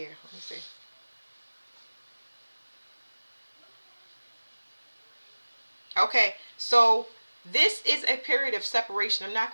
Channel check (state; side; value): inverted; both; correlation -1.00